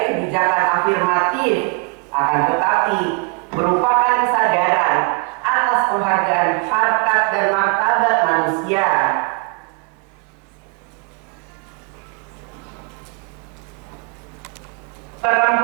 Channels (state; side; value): quieter; left; 32.4 dB